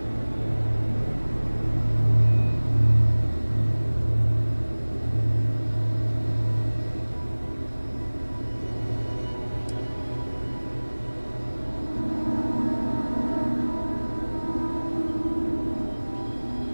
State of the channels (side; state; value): both; inverted; correlation -1.00